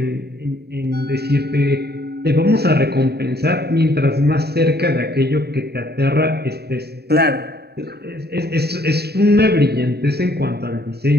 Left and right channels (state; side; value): late; left; 0.47 ms